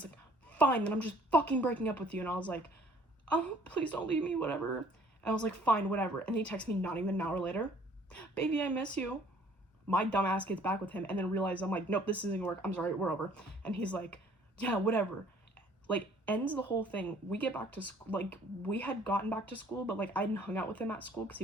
like, fine, then I'm just fucking breaking up with you. And I was like, oh, please don't leave me, whatever. And I was like, fine, whatever. And he texts me not even an hour later, baby, I miss you. My dumbass gets back with him and then realizes, I'm like, nope, this isn't gonna work. I'm sorry, we're over. And he's like, yeah, whatever. Like, ends the whole thing. We get back to school. Like, we had gotten back to school, but like I hadn't hung out with him at school because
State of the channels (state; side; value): normal; both; correlation 0.57